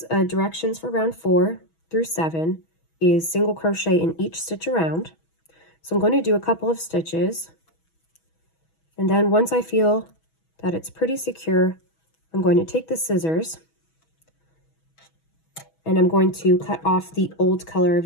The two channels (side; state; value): right; late; 6.2 ms